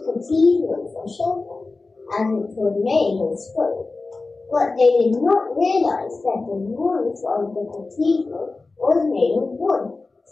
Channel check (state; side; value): quieter; right; 3.6 dB